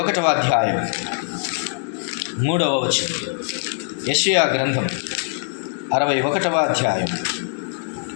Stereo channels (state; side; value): silent; right; 64 dB below the other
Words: అధ్యాయం 3వ వచనం. యెషయా గ్రంథం 61వ అధ్యాయం.